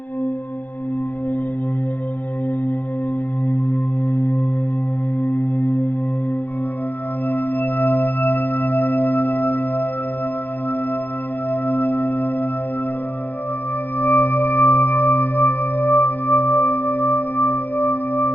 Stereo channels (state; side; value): late; right; 0.085 ms